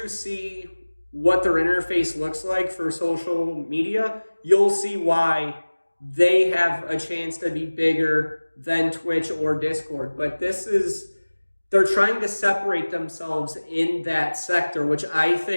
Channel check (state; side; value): inverted; both; correlation -1.00